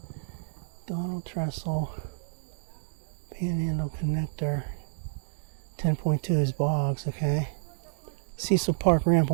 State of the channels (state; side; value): silent; left; digital silence